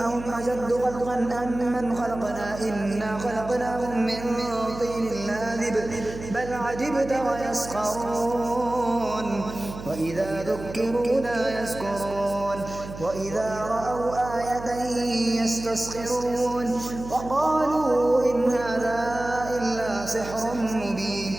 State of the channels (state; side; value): noise; right; hum, 12 dB below the sound